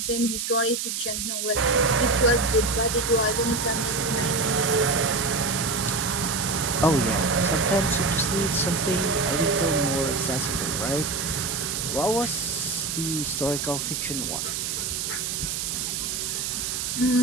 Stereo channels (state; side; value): noise; right; hiss, 2 dB below the sound